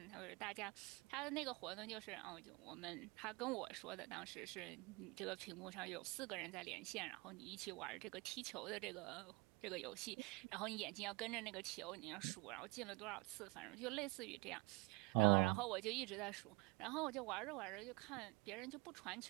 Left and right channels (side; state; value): left; quieter; 26.8 dB